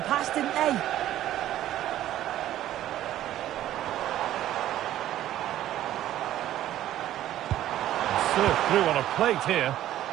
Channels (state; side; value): quieter; left; 12.9 dB